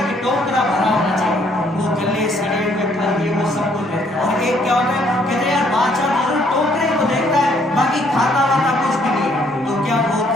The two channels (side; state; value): both; normal; correlation 0.66